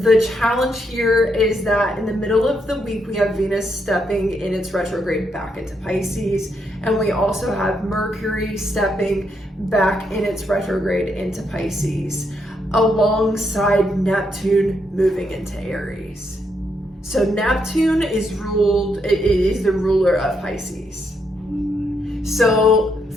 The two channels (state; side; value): normal; both; correlation 0.78